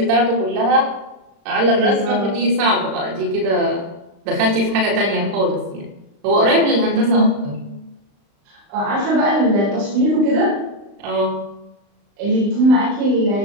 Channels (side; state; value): left; late; 35 ms